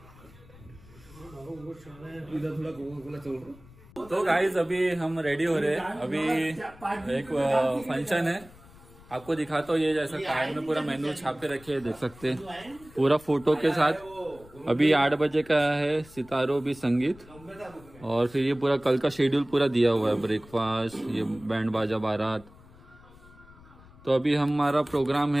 इधर थोड़ा कोका-कोला चल रहा। तो गाइस अभी हम रेडी हो रहे हैं। अभी एक फंक्शन है, आपको दिखाता हूँ। ये जैसा कार्ड में पूरा मेन्यू छाप के रखे हैं, देख सकते हैं पूरा फोटो के साथ। अभी 8 बजे का है सितारों भी संगीत, और फिर ये पूरा कल का शेड्यूल पूरा दिया हुआ है, ब्रेकफास्ट, ये बैंड बाजा बारात। तो अभी हमारा प्रोग्राम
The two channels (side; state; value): left; noise; rumble, 23 dB below the sound